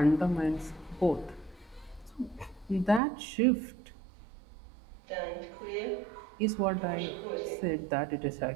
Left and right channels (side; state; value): left; drops out; at 3.0 s